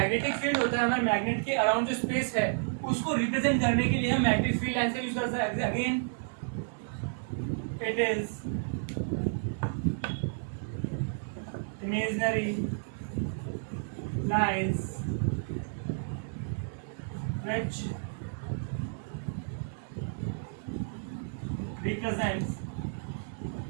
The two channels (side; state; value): left; silent; 57 dB below the other